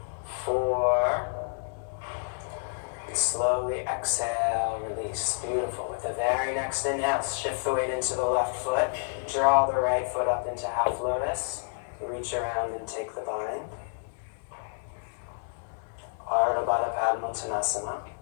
4. Slowly exhale, release. Beautiful. With the very next inhale, shift the weight into the left foot. Draw the right foot up into half lotus. Reach around and take the bind. Ardha Baddha Padmottanasana.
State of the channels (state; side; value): silent; right; 58 dB below the other